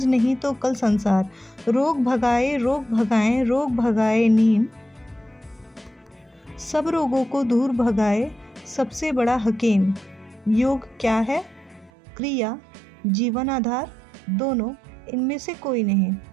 नहीं तो कल संसार। रोग भगाए रोग भगाए नीम, सब रोगों को दूर भगाए सबसे बड़ा हकीम। योग क्या है? क्रिया, जीवन आधार, दोनों, इनमें से कोई नहीं।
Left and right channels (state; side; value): drops out; left; at 11.9 s